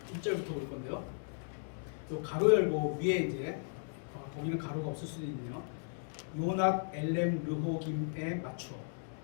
1절부터 볼 건데요. 요 가로 열고 위에 이제 거기는 가로가 없을 수도 있네요. 요낫 엘렘 르호김에 맞추어.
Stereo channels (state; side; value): silent; right; digital silence